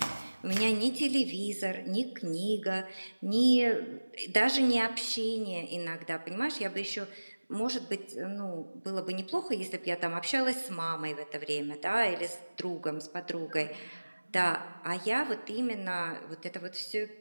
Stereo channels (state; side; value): inverted; both; correlation -1.00